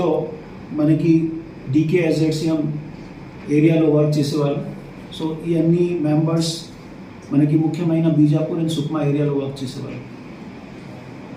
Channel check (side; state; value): both; identical; correlation 1.00